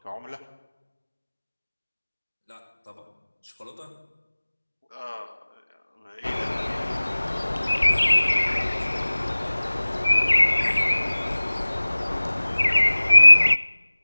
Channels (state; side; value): inverted; both; correlation -1.00